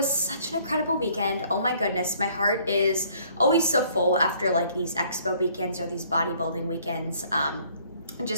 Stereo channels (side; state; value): both; inverted; correlation -0.60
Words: such an incredible weekend. Oh my goodness, my heart is always so full after like these expo weekends or these bodybuilding weekends.